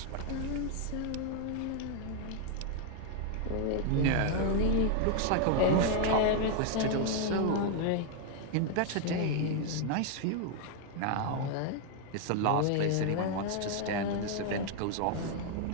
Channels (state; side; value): different; both; correlation 0.00